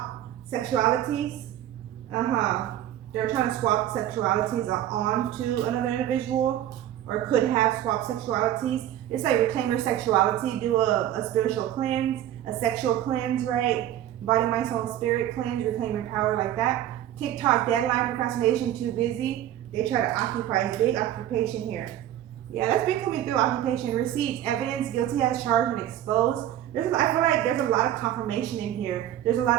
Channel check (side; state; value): left; quieter; 12.1 dB